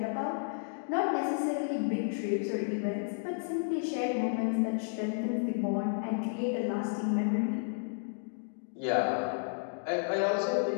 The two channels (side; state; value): right; silent; digital silence